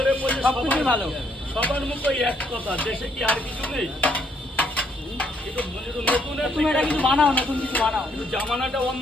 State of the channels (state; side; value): normal; both; correlation 0.70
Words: বলছে সবকিছু ভালো। সবার মুখে এক কথা, দেশে কি আর কিছু নেই? তুমি এটা কিছু বানাও, নতুন কিছু বানাও। কিন্তু জামানাটা